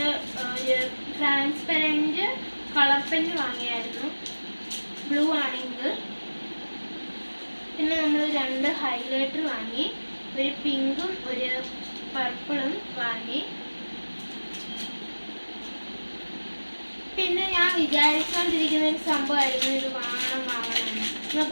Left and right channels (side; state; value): both; inverted; correlation -1.00